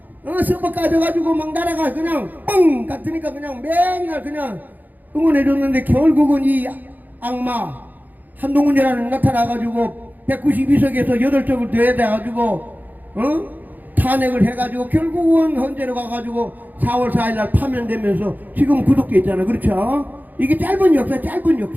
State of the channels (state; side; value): late; left; 0.084 ms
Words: 서버 까져가지고 막 나라가 그냥 뻥 같으니까 그냥 맨날 그냥 응원해줬는데 결국은 이 악마 한동훈이라는 나타나가지고 192석에서 8석을 더해가지고 탄핵을 해가지고 결국은 헌재로 가가지고 4월 4일날 파면되면서 지금 구속돼 있잖아. 그렇죠? 이게 짧은